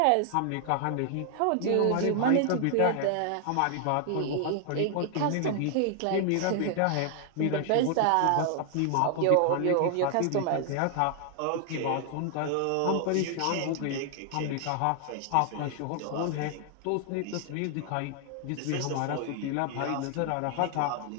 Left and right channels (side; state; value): both; different; correlation 0.00